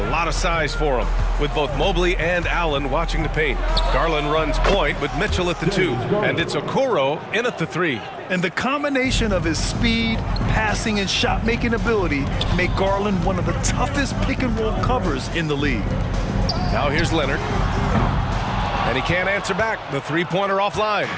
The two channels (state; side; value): identical; both; correlation 1.00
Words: lot of size for them, with both Mobley and Allen watching the paint. Garland runs point with Mitchell at the 2, and it's Okoro in at the 3. And the combination of his speed, passing, and shot-making ability make Garland one of the toughest pick-and-roll covers in the league. Now here's Leonard. And he can't answer back. The three-pointer offline.